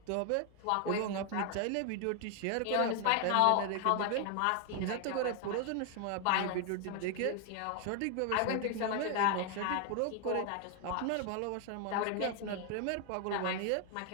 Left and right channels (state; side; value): different; both; correlation 0.00